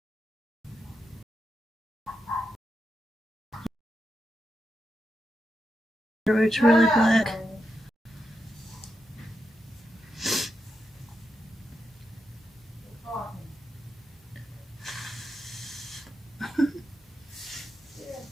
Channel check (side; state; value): both; normal; correlation 0.87